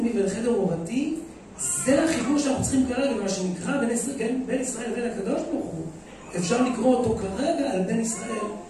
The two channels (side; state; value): both; identical; correlation 1.00